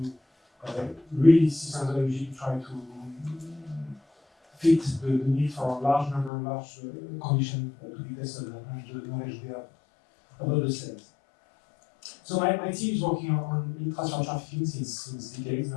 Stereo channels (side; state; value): right; drops out; at 6.3 s